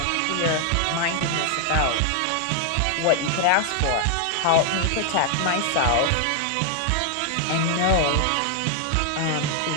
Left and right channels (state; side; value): different; both; correlation 0.00